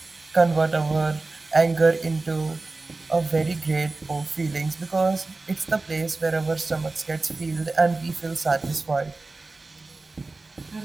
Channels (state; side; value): quieter; left; 3.4 dB